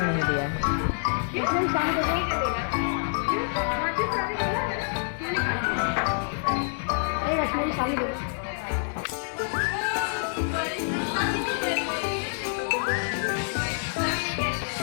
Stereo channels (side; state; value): right; silent; 60 dB below the other